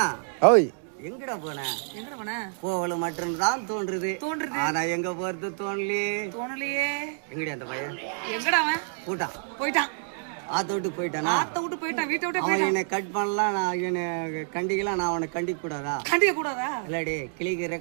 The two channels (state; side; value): silent; left; digital silence